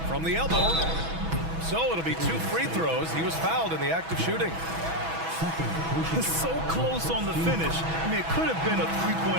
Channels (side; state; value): left; late; 6.1 ms